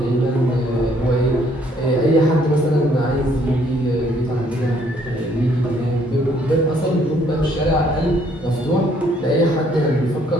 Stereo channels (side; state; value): both; normal; correlation 0.65